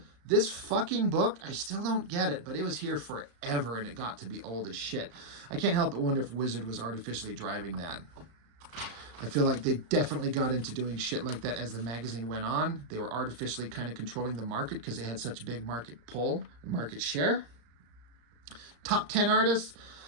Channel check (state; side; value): late; left; 34 ms